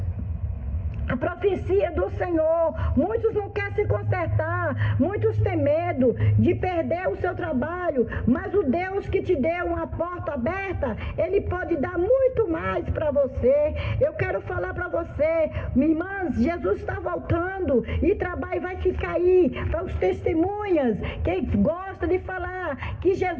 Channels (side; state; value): both; identical; correlation 1.00